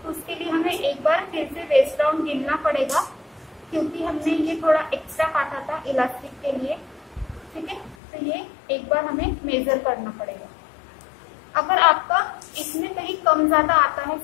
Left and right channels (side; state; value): right; drops out; at 8.0 s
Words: तो उसके लिए हमें एक बार फिर से वेस्ट राउंड गिनना पड़ेगा, क्योंकि हमने ये थोड़ा एक्स्ट्रा काटा था इलास्टिक के लिए। ठीक है, तो ये एक बार हमें मेजर करना पड़ेगा। अगर आपका इसमें कहीं कम ज्यादा आता है,